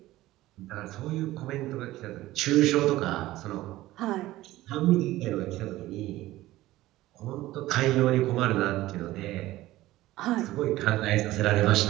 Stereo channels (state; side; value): quieter; left; 16.5 dB